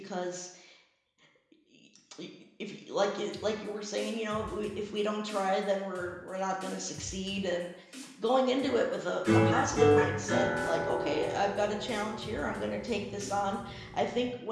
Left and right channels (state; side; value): identical; both; correlation 1.00